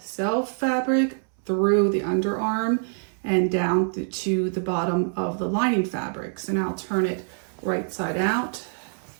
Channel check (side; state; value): left; silent; 61 dB below the other